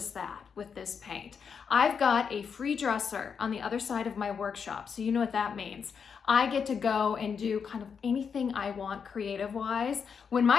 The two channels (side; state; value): right; quieter; 6.4 dB